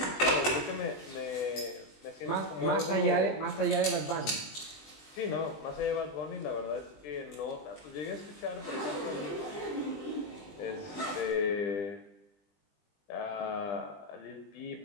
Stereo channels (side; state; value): right; late; 20 ms